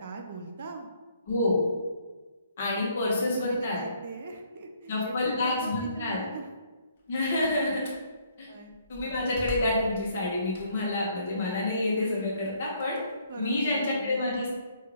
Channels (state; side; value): inverted; both; correlation -0.65